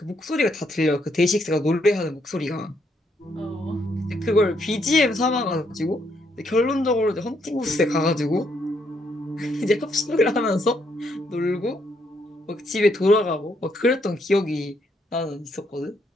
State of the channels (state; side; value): normal; both; correlation 0.74